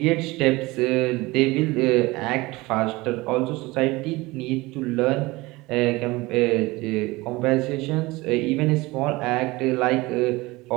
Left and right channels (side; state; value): left; quieter; 21.6 dB